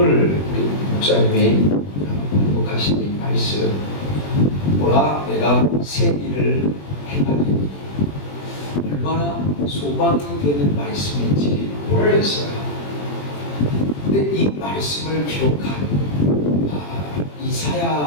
우리 목사님이 공독하신 이 말씀, 보라 내가 새 일을 행하리니, 얼마나 소망이 되는 말씀인지 모르겠어요. 근데 이 말씀을 기록한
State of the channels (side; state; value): right; late; 21 ms